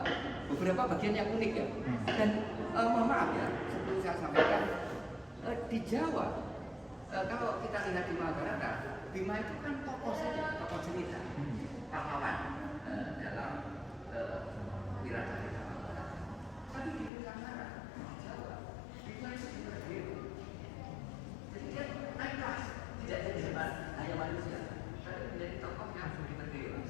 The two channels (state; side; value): drops out; right; at 17.1 s